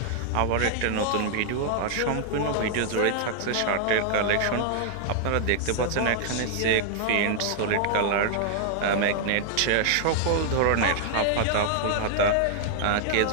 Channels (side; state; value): both; different; correlation 0.00